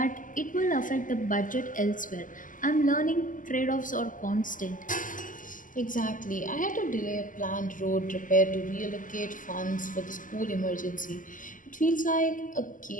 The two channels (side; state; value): right; late; 0.38 ms